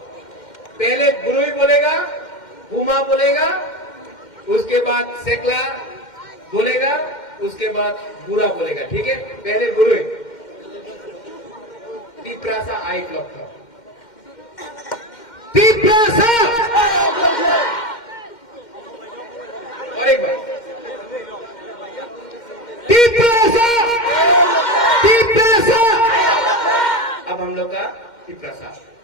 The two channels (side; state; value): right; late; 2.1 ms